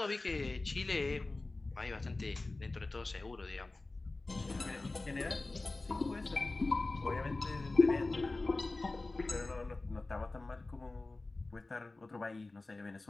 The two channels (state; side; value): quieter; right; 3.2 dB